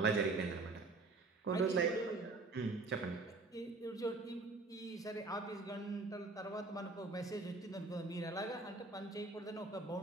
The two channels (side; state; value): left; quieter; 3.5 dB